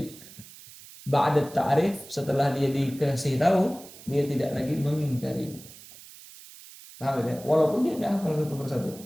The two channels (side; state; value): right; noise; hiss, 18 dB below the sound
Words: ba'da ta'rif, setelah dia dikasih tahu, dia tidak lagi mengingkari. Paham ya? Walaupun dia tidak hafal satu persatu